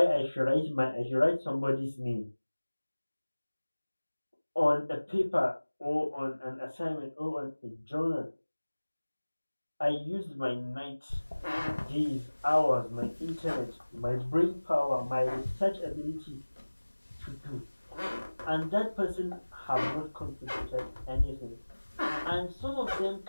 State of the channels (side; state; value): both; inverted; correlation -1.00